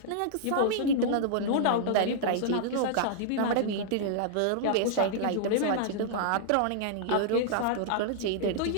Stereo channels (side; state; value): both; different; correlation -0.02